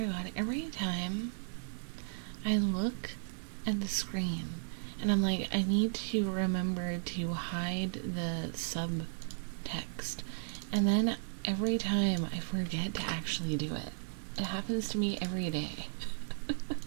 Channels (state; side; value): silent; left; 54 dB below the other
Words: God, every time I look at the screen and I'm like, I need to remember to hide the subtext. And then every time I forget to actually do it. It happens to me every day.